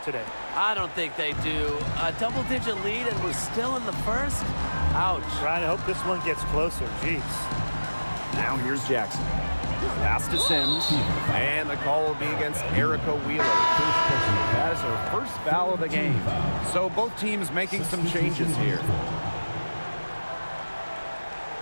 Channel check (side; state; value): both; inverted; correlation -1.00